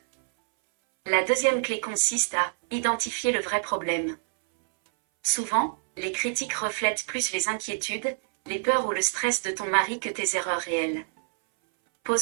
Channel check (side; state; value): left; silent; 61 dB below the other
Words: La deuxième clé consiste à identifier le vrai problème. Souvent, les critiques reflètent plus les inquiétudes, les peurs ou le stress de ton mari que tes erreurs réelles.